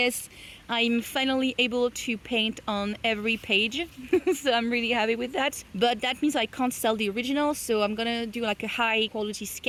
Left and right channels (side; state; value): both; identical; correlation 1.00